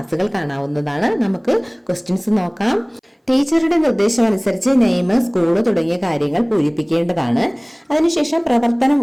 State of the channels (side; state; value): both; identical; correlation 1.00